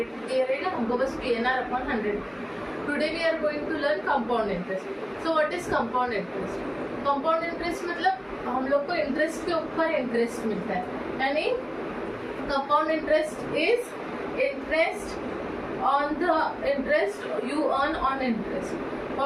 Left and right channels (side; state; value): both; identical; correlation 1.00